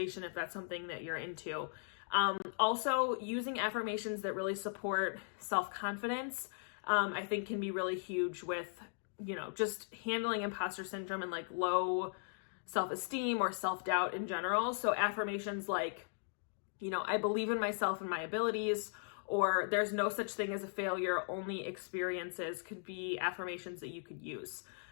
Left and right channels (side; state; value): right; silent; digital silence